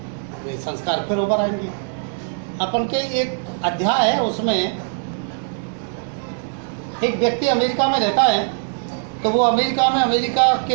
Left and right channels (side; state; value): left; silent; digital silence